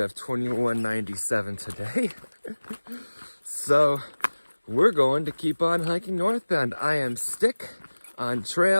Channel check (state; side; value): inverted; both; correlation -1.00